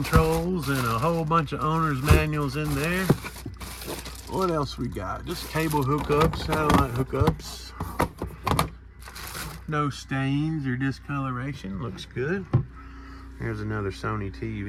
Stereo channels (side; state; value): both; identical; correlation 1.00